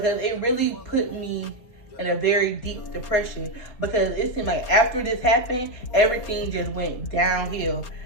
it really put me in a very deep depression, because it seemed like after this happened, everything just went downhill.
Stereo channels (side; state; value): right; late; 4.3 ms